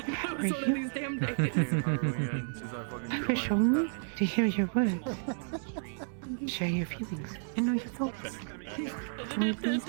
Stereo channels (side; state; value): left; silent; digital silence